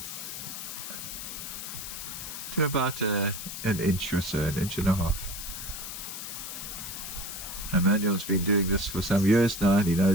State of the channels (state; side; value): noise; left; hiss, 8 dB below the sound